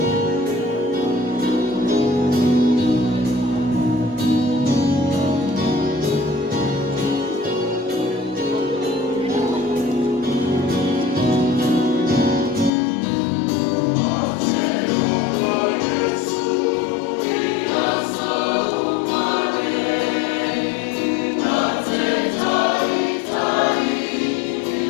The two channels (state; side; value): drops out; right; at 12.7 s